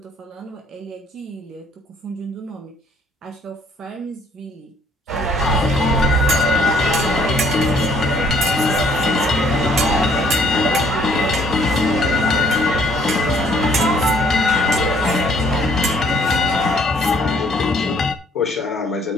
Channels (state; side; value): normal; both; correlation 0.63